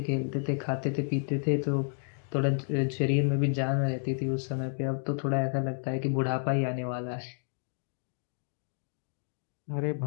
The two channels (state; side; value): silent; right; 57 dB below the other